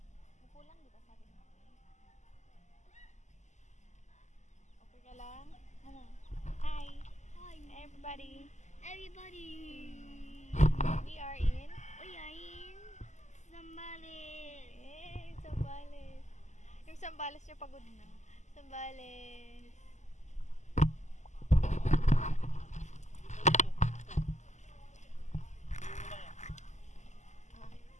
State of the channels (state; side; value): late; right; 0.34 ms